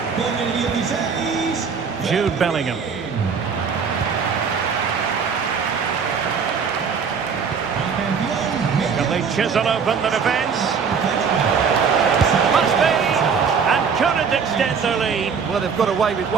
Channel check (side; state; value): left; quieter; 6.1 dB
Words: Jude Bellingham. Can they chisel open the defence? Must be! And couldn't extend their lead. Well, they've got away with